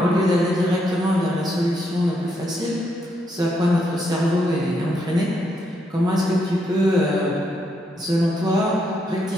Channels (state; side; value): normal; both; correlation 0.78